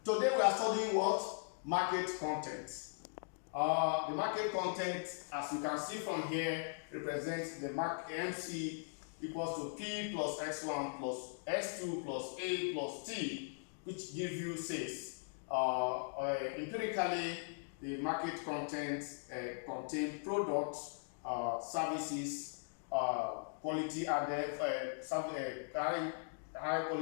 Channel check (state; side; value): silent; right; digital silence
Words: Today we are studying what? Market content. The market content, as you can see from here, represents the MC equals to P plus X1 plus X2 plus A plus T, which give you sales. Empirically, the market content contain products, services, quality added, high